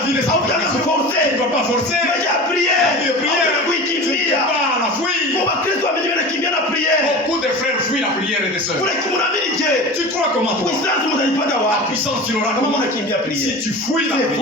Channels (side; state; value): both; normal; correlation 0.33